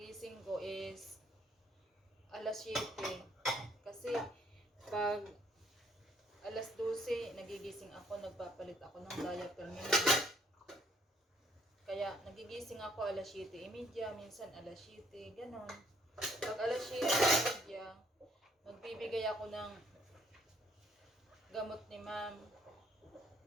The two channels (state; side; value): normal; both; correlation 0.65